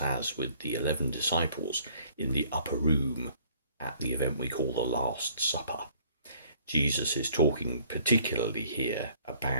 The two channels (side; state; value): both; inverted; correlation -0.58